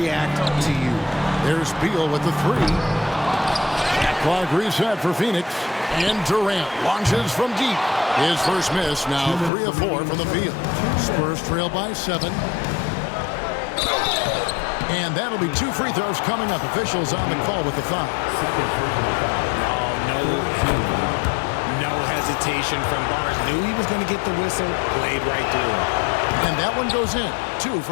to you. There's Beal with the 3. Shot clock reset for Phoenix. And Durant launches from deep. His first miss, now 3 of 4 from the field. Spurs trail by 7. And that'll be 2 free throws coming up. Officials on the call with the foul. No hesitation from Barnes. Knew he was going to get the whistle, played right through him. And that one goes in. 2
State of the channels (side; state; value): right; drops out; at 9.5 s